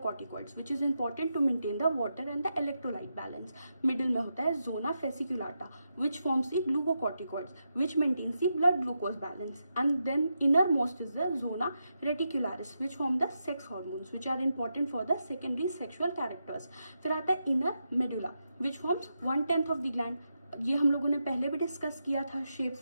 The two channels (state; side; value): inverted; both; correlation -0.86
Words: which is important to maintain the water and the electrolyte balance. Middle में होता है zona fasciculata which forms the glucocorticoids which maintains the blood glucose balance, and then innermost is the zona reticularis which form the sex hormones which are important for the secondary sexual characters. फिर आता है inner medulla which forms 1/10 of the gland, ये हम लोगों ने पहले भी discuss किया था शेप